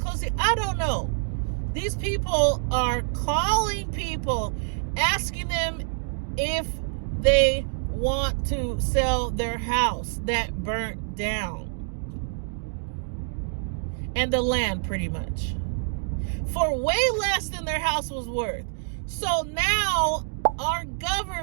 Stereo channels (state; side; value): silent; left; 58 dB below the other